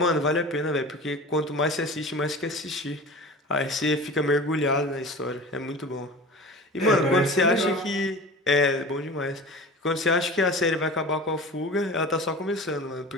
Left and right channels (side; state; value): both; normal; correlation 0.36